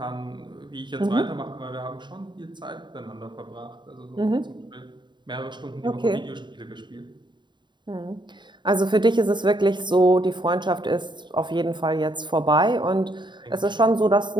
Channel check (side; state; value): left; late; 0.22 ms